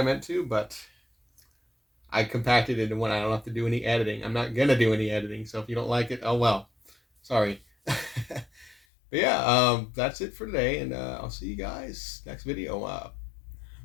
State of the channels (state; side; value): drops out; right; at 8.8 s